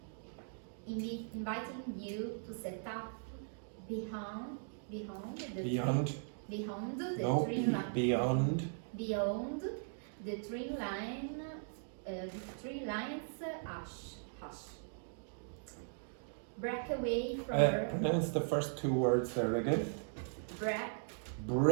inviting you to set up beyond the three lines. Hush. Break away from Pronounce the first two words there again.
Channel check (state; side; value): silent; left; digital silence